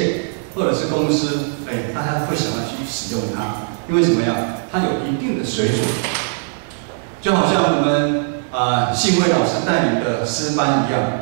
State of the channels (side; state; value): left; silent; 66 dB below the other